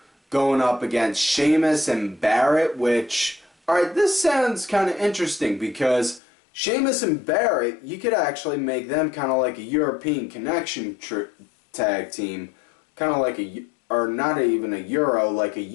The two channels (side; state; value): right; drops out; at 6.2 s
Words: going up against Sheamus and Barrett, which, alright, this sounds kind of interesting because Sheamus and Barrett, you could actually make them kind of like a European Connection tag team. Kind of like or not even a Euro, like a